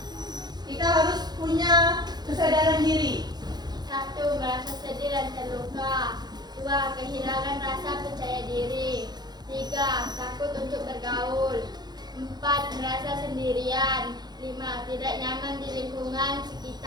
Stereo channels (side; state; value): left; late; 0.20 ms